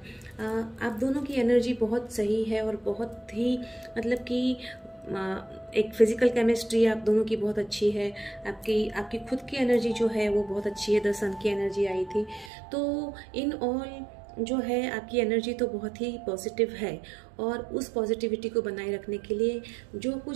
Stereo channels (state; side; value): drops out; left; at 12.5 s